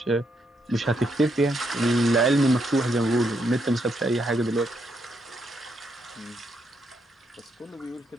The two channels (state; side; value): normal; both; correlation 0.78